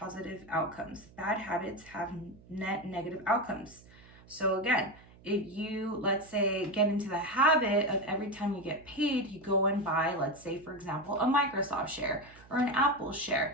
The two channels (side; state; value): right; noise; hum, 24 dB below the sound